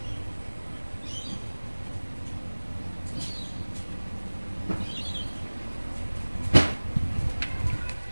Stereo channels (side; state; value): both; inverted; correlation -1.00